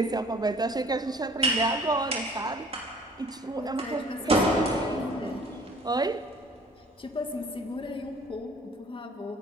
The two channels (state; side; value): normal; both; correlation 0.52